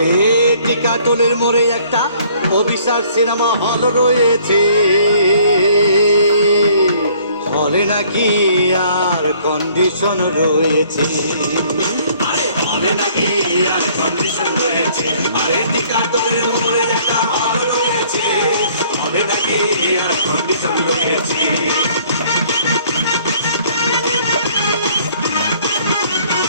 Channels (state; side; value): inverted; both; correlation -0.59